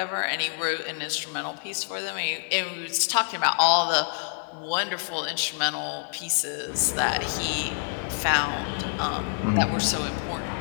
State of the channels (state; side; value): silent; right; digital silence